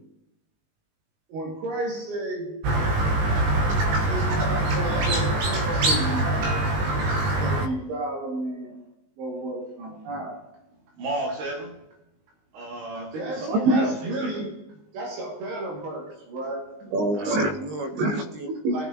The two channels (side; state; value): left; late; 19 ms